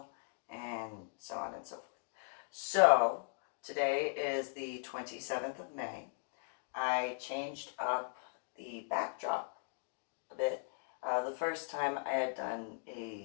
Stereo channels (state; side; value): silent; right; digital silence